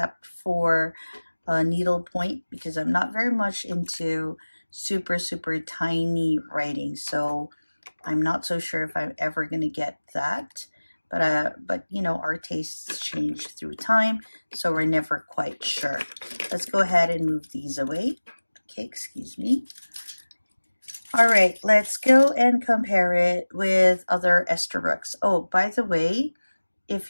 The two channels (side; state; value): both; inverted; correlation -1.00